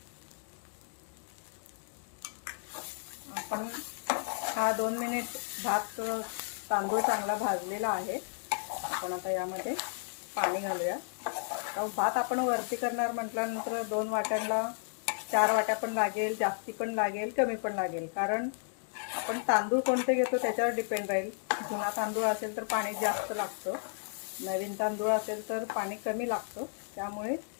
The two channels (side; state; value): right; silent; digital silence